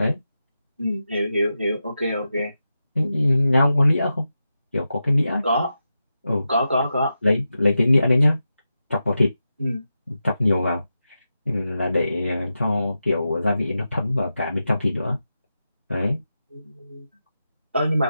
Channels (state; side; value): inverted; both; correlation -0.90